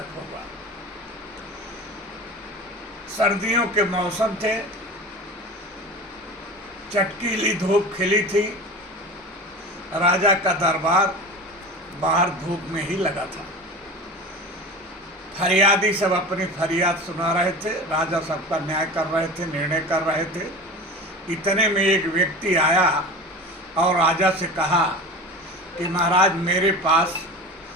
होगा। सर्दियों के मौसम थे, चटकीली धूप खिली थी, राजा का दरबार बाहर धूप में ही लगा था। फरियादी सब अपनी फरियाद सुना रहे थे, राजा सबका न्याय कर रहे थे, निर्णय कर रहे थे। इतने में एक व्यक्ति आया और राजा से कहा कि महाराज, मेरे पास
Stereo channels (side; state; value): both; normal; correlation 0.32